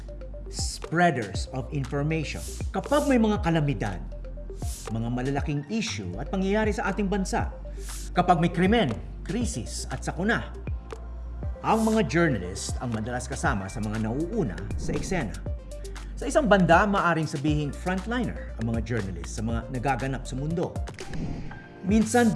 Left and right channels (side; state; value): both; identical; correlation 1.00